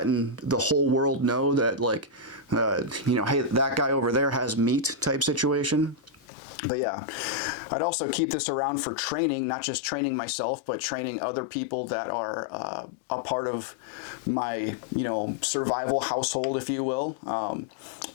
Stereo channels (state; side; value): drops out; right; at 6.2 s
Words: the whole world know that, like, you know, hey, that guy over there has meat type situation. But yeah, I'd also keep this around for training, not just training myself, but training other people that are a part of my, you know, survival household, if you will.